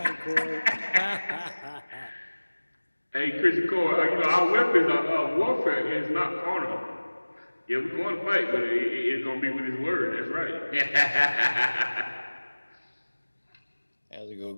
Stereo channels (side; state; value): both; inverted; correlation -1.00